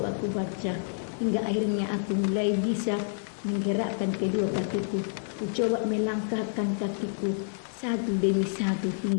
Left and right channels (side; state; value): right; silent; digital silence